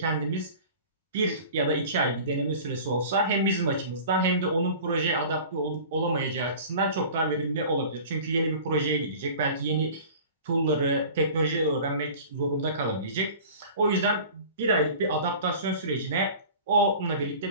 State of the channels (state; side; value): inverted; both; correlation -0.41